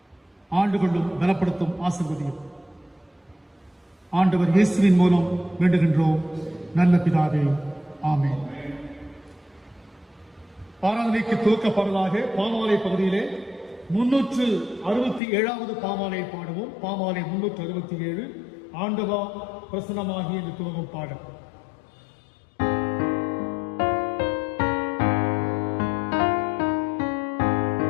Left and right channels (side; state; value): right; drops out; at 15.2 s